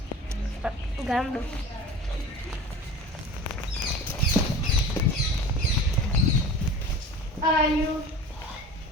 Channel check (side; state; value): both; normal; correlation 0.37